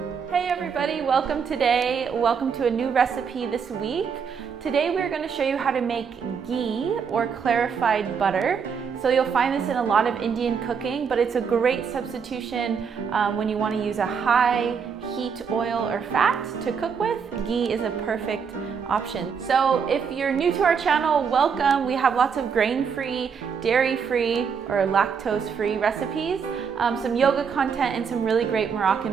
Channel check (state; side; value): quieter; left; 6.4 dB